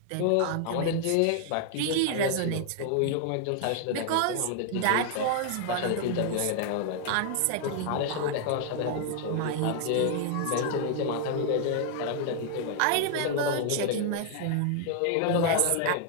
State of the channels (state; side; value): different; both; correlation 0.00